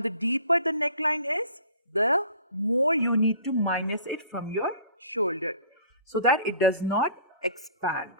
deeper the neckline is, the more you need to minus it from your shoulder so that it does not expand.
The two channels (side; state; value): both; inverted; correlation -0.49